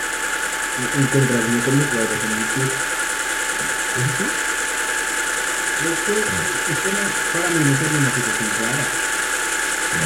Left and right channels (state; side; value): identical; both; correlation 1.00